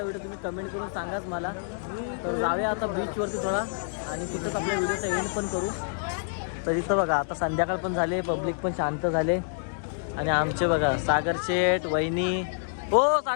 व्हिडिओ तुम्ही कमेंट करून सांगाच मला. तर जाऊया आता बीचवरती थोडा आणि तिथंच आपल्या व्हिडिओचा एंड पण करू. तर इथं बघा आता संध्याकाळ पण झाले, पब्लिक पण शांत झाले आणि आमचे बघा सागर शेठ, वहिनी, हो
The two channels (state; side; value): silent; right; digital silence